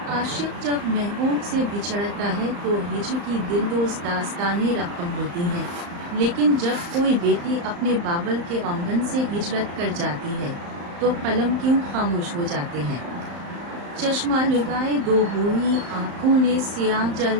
आशिक जब महबूब से बिछड़ता है तो हिज्र की दिलदोज़ दास्तानें रकम होती हैं, लेकिन जब कोई बेटी अपने बाबल के आंगन से हिजरत कर जाती है तो कलम क्यों खामोश हो जाते हैं। चश्मा लगाए दो बूढ़ी आंखों ने सियाह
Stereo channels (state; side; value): late; left; 35 ms